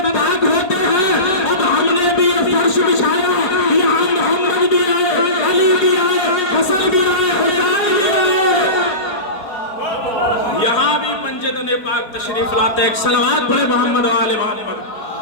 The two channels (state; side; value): late; right; 4.5 ms